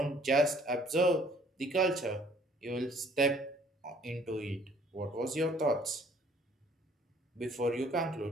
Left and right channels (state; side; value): normal; both; correlation 0.59